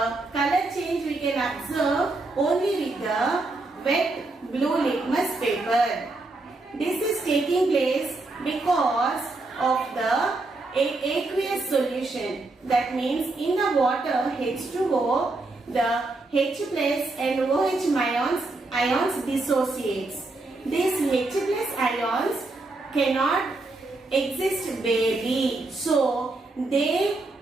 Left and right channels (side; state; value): left; quieter; 3.2 dB